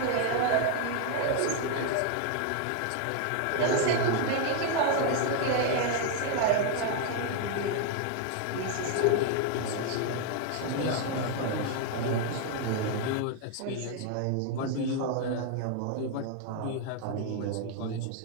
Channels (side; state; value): both; different; correlation 0.00